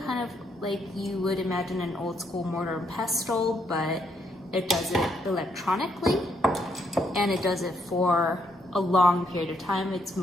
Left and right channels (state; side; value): normal; both; correlation 0.75